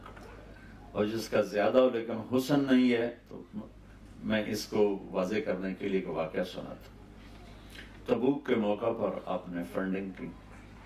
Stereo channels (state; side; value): identical; both; correlation 1.00